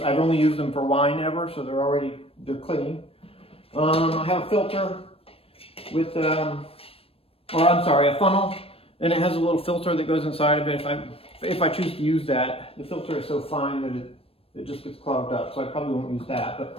I've only used them for wine ever, so they're clean. I have a filter with, a funnel, and it has a little filter that goes inside of it. If I choose to use that, the filter is so fine that it just gets clogged up, so I probably won't use that.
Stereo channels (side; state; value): right; late; 0.28 ms